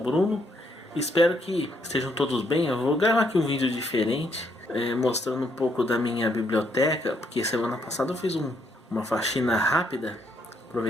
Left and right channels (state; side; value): normal; both; correlation 0.72